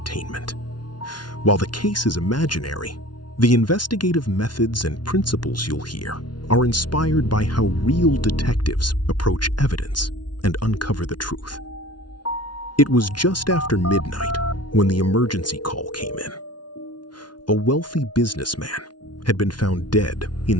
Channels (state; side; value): late; right; 0.70 ms